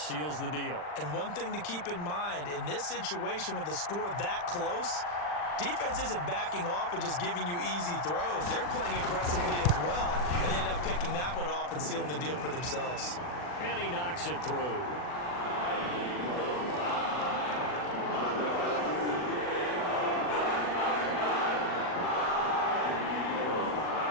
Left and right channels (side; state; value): right; late; 40 ms